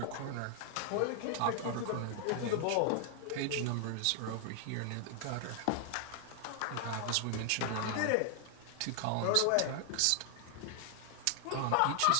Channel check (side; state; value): both; different; correlation 0.00